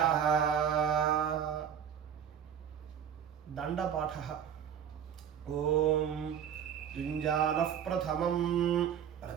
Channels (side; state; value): left; quieter; 8.7 dB